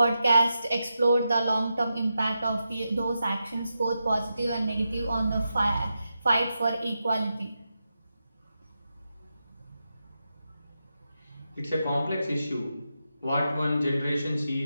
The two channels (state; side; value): inverted; both; correlation -0.88